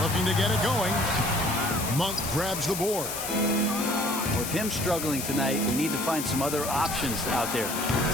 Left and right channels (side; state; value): left; noise; hiss, 5 dB below the sound